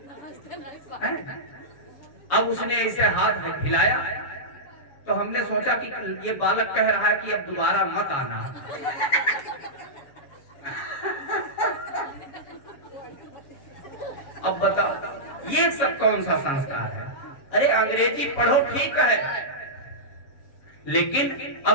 अब उसने ऐसे हाथ हिलाया तो हमने सोचा कि ये बालक कह रहा है कि अब दोबारा मत आना। अब बताओ ये सब कौन सा संस्कार है? अरे अंग्रेजी पढ़ो ठीक है, लेकिन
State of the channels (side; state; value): right; late; 7.2 ms